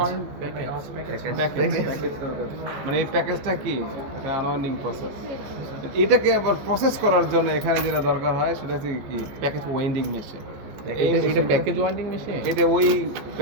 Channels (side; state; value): left; late; 14 ms